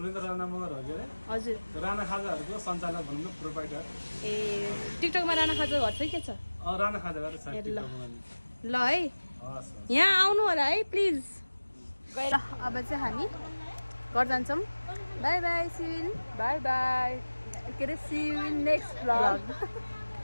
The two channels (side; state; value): both; inverted; correlation -1.00